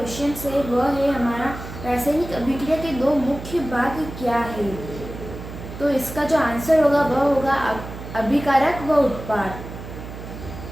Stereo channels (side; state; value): right; noise; hum, 11 dB below the sound